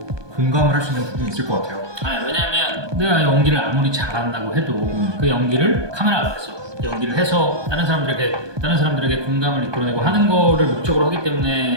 공감을 할 수 있는 부분이 있을 것 같아요. 왜냐하면 내가 연기를 아무리 잘한다고 해도 그 연기를 카메라 앞에서 연기를 해서 다른 사람들에게 공감을 이끌어내고 하는 거를 목적으로 하기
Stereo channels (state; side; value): late; left; 1.2 ms